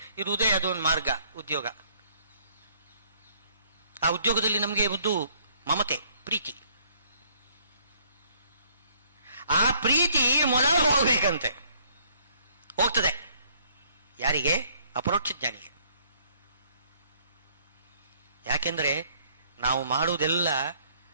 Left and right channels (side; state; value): both; inverted; correlation -0.62